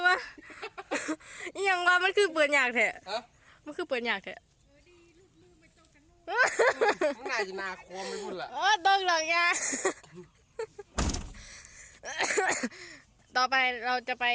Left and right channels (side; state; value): both; identical; correlation 1.00